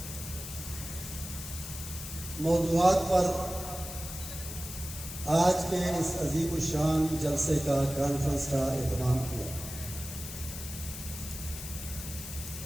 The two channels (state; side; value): noise; left; hiss, 9 dB below the sound